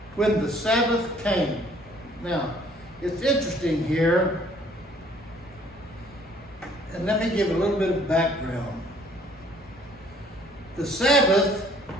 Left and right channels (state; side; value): normal; both; correlation 0.59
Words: when the Sabbath came. Now, it's interesting here, and let me give a little bit of background. The Sabbath